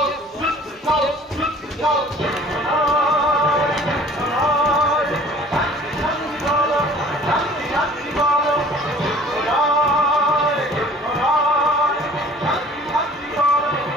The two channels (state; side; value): normal; both; correlation 0.50